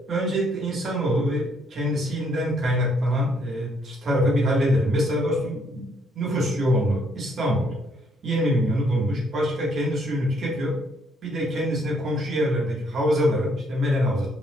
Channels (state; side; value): normal; both; correlation 0.69